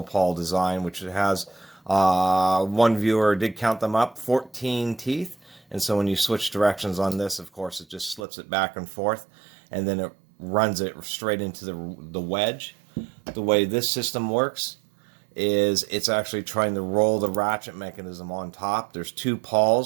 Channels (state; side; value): drops out; left; at 8.2 s